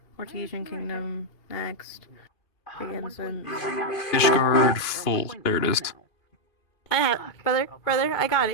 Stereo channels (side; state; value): right; late; 2.5 ms